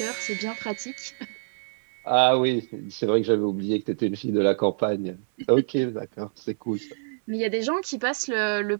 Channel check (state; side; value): silent; left; 61 dB below the other